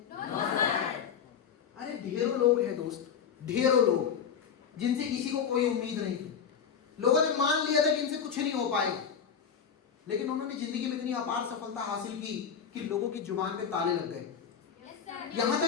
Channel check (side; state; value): right; quieter; 7.2 dB